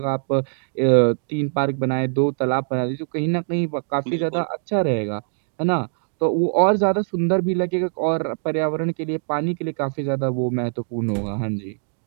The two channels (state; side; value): silent; left; digital silence